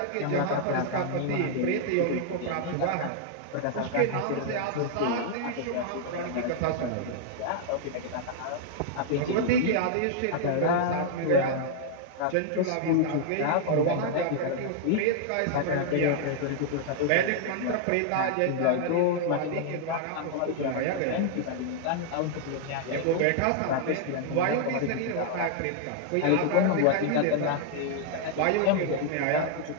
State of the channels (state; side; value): different; both; correlation 0.00